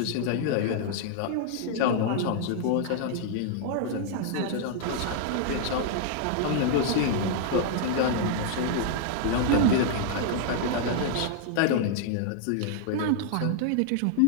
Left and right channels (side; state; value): both; different; correlation -0.01